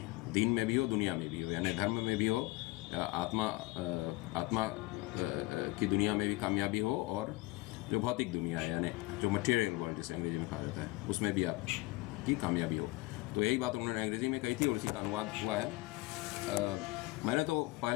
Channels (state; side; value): quieter; right; 21.7 dB